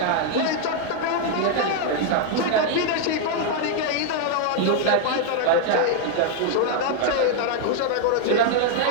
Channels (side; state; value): both; different; correlation 0.00